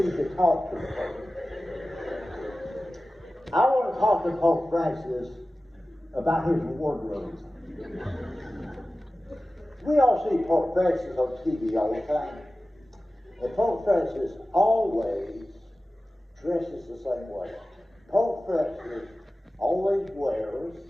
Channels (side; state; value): both; normal; correlation 0.96